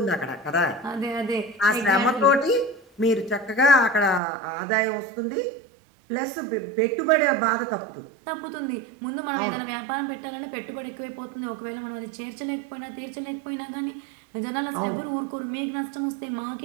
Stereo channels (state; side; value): drops out; left; at 4.2 s